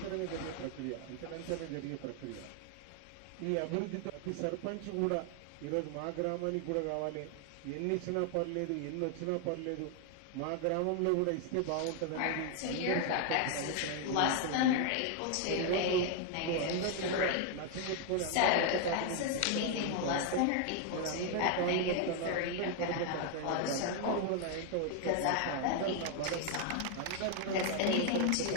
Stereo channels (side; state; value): both; different; correlation 0.00